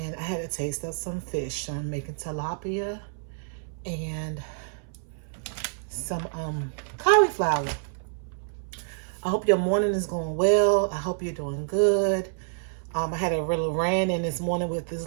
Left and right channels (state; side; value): silent; left; 60 dB below the other